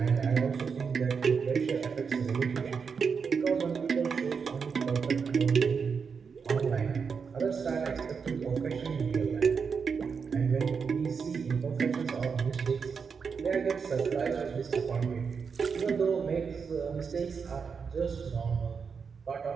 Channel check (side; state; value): left; quieter; 5.8 dB